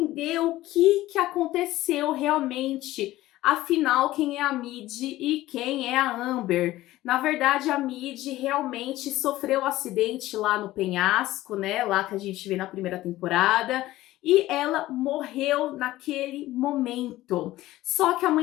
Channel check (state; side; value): quieter; right; 16.3 dB